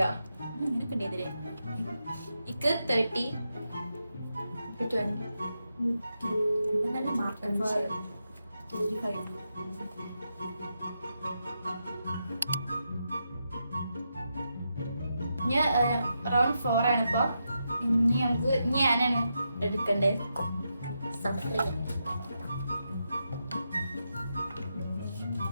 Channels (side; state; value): both; inverted; correlation -0.85